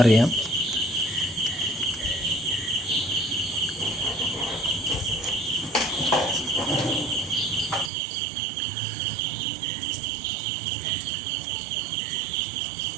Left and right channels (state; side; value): drops out; left; at 7.9 s